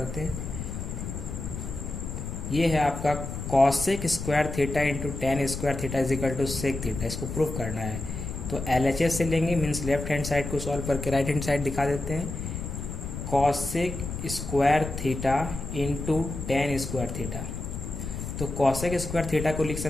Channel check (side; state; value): left; noise; rumble, 6 dB below the sound